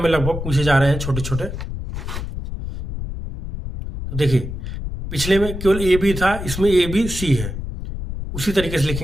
में लगभग पूछे जा रहे हैं छोटे छोटे। तो देखिए पिछले में केवल ए बी था, इसमें ए बी सी है, उसी तरीके से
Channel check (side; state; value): left; noise; rumble, 6 dB below the sound